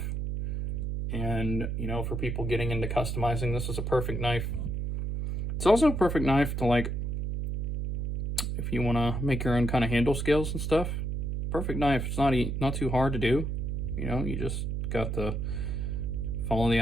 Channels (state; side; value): noise; right; hum, 2 dB below the sound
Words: And, you know, for people getting into customizing, this is a perfect knife. It's also a perfect knife to, like, if you want to make your own kind of handle scales and stuff. Perfect knife. It's not too hard to do. You know, you just got to follow the